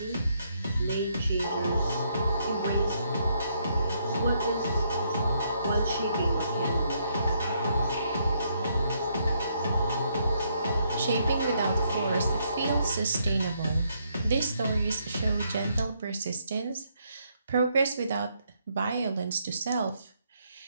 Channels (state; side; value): inverted; both; correlation -0.74